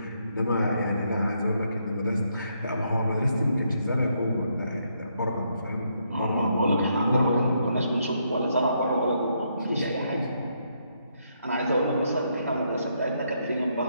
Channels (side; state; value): both; inverted; correlation -0.76